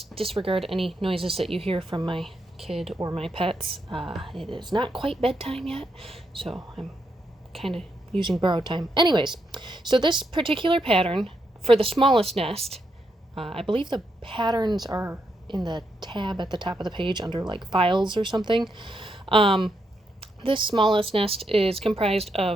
disregard any noises that you hear from my kid or my pets. It is not quite bedtime yet, so I'm kind of using borrowed time. Anyways, so this particular pattern for the smallest nest, I believe the patterns are in the tab at the top of the page under like files or something. This smallest nest is comprised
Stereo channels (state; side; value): normal; both; correlation 0.81